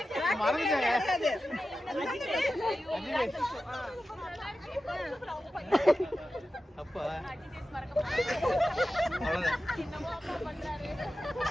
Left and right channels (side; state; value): both; normal; correlation 0.93